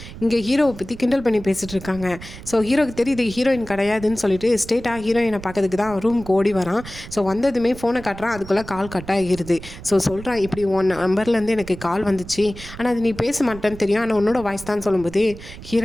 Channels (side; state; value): right; noise; rumble, 14 dB below the sound